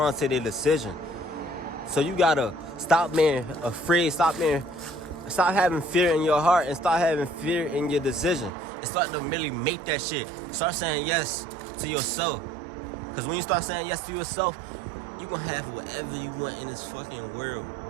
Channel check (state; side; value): drops out; left; at 8.5 s